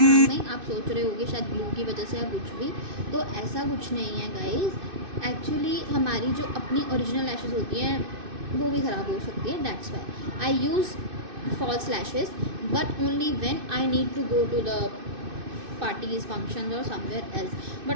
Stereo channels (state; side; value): late; left; 2.6 ms